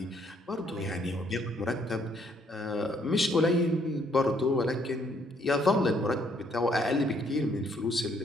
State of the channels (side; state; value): both; normal; correlation 0.68